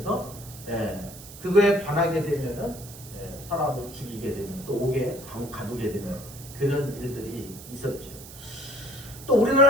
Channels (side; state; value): right; noise; hiss, 16 dB below the sound